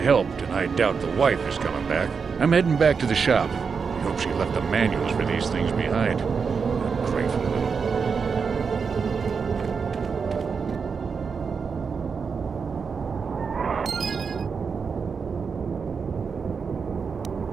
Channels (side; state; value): left; quieter; 5.6 dB